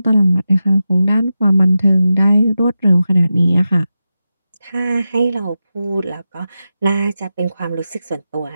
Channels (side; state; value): both; inverted; correlation -0.91